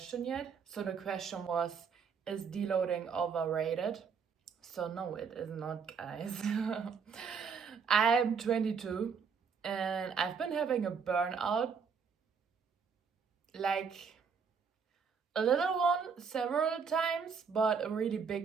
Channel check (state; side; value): quieter; left; 6.0 dB